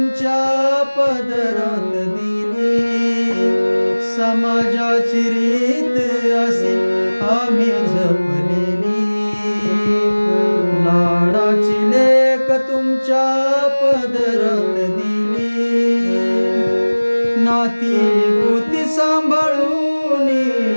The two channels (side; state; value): both; inverted; correlation -1.00